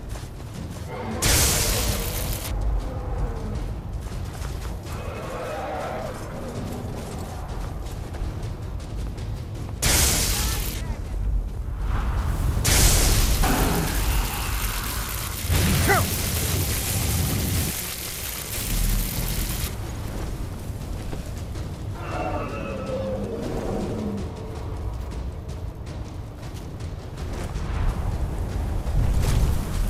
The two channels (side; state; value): both; identical; correlation 1.00